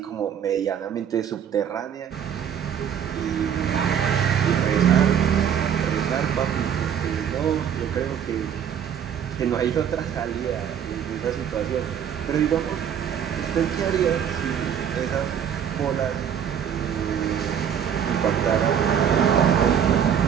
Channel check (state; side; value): quieter; left; 8.6 dB